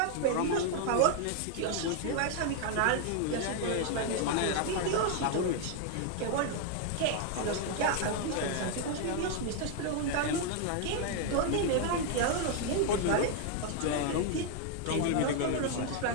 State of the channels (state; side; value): different; both; correlation 0.00